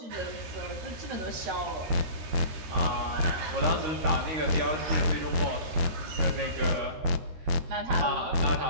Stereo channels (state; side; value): late; left; 13 ms